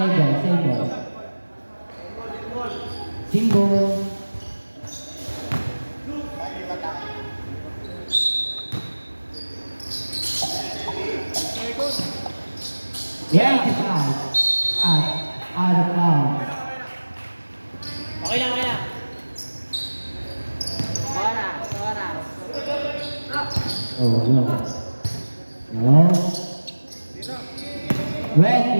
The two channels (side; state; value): both; inverted; correlation -1.00